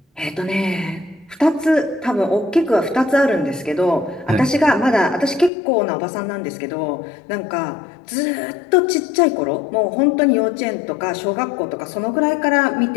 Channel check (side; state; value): right; drops out; at 5.5 s